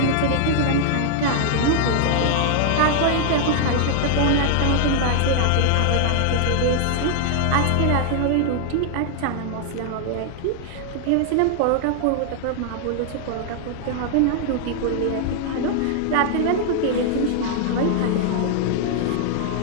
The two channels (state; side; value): different; both; correlation 0.00